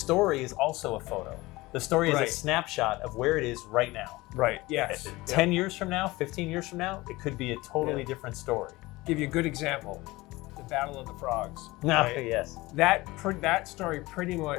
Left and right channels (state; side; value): quieter; right; 20.5 dB